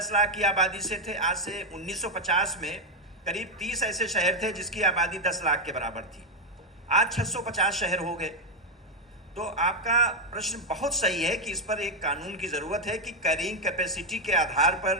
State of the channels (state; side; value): normal; both; correlation 0.05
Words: लाख की आबादी से थे, आज से 1950 में करीब 30 ऐसे शहर थे जिसकी आबादी 10 लाख के बराबर थी। आज 650 शहर हो गए। तो आपका प्रश्न बहुत सही है कि इस पर एक कानून की ज़रूरत है कि कैरिंग कैपेसिटी के आधार